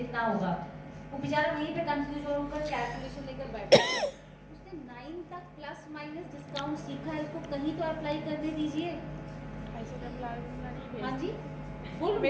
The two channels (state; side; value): identical; both; correlation 1.00